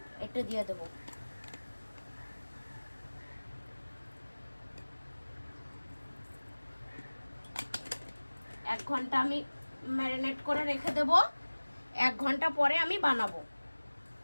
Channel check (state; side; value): inverted; both; correlation -1.00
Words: এটা দিয়ে দেবো। এক ঘন্টা আমি ম্যারিনেট করে রেখে দেব। 1 ঘন্টা পরে আমি বানাবো।